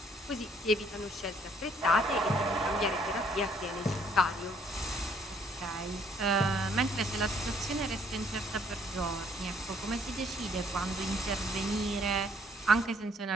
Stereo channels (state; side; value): normal; both; correlation 0.65